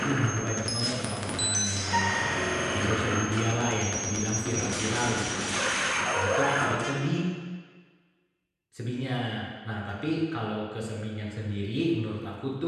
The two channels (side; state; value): both; identical; correlation 1.00